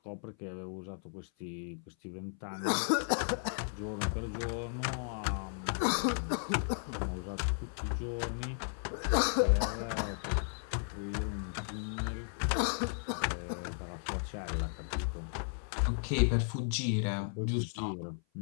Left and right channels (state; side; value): silent; right; 54 dB below the other